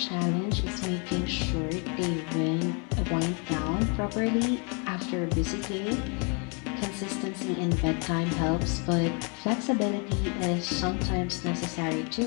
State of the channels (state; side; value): quieter; right; 35.6 dB